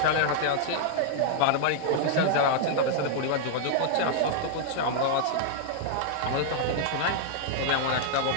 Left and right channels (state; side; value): different; both; correlation -0.01